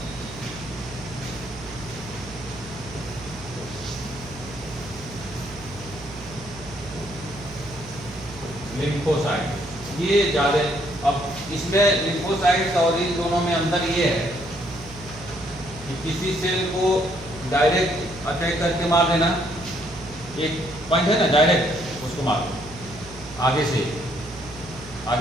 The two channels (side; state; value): right; noise; hum, 16 dB below the sound